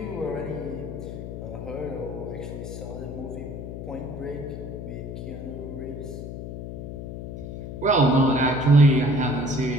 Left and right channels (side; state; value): left; noise; hum, 8 dB below the sound